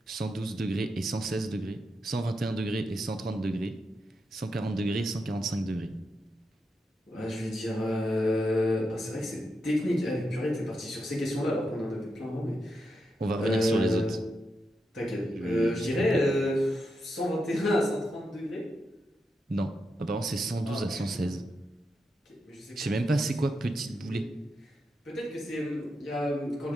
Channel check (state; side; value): normal; both; correlation 0.85